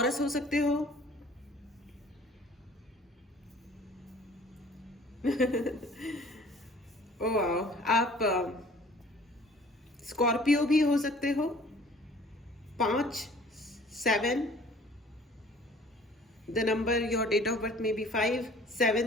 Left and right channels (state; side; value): normal; both; correlation 0.52